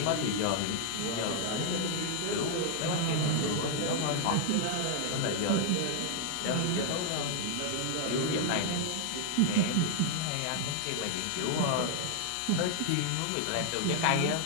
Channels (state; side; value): different; both; correlation 0.00